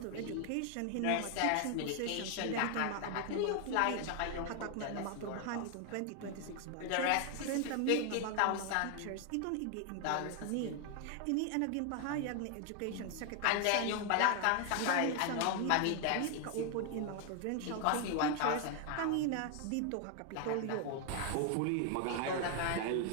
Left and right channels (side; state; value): both; different; correlation 0.00